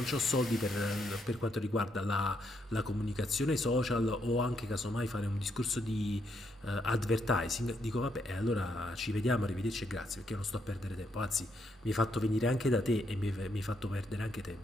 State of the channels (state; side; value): normal; both; correlation 0.77